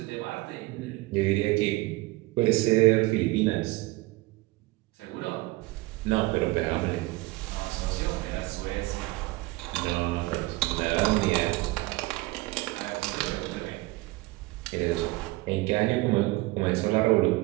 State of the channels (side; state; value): left; quieter; 21.3 dB